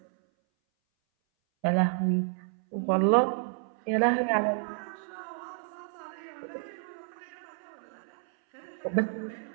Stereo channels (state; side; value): silent; left; 57 dB below the other